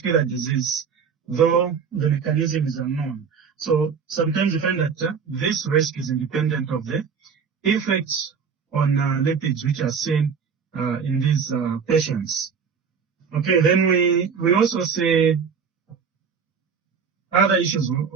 disease, though the mechanism is unknown. So sometimes you find that this risk is independent of the effects on lipids which are seen in these patients. Okay, then we also see other issues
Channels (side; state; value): left; quieter; 6.2 dB